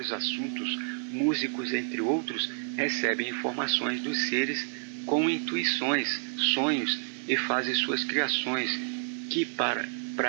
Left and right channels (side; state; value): left; silent; 58 dB below the other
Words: assuntos, músicos, entre outros, recebem informações dos seres com intuições, sonhos e fazem suas criações, que